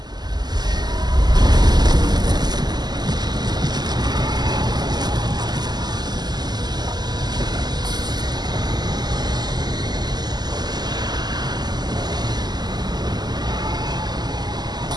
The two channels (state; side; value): late; left; 0.20 ms